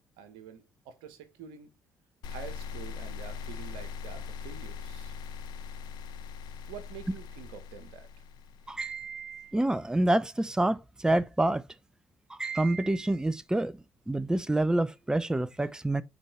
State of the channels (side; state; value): both; normal; correlation 0.93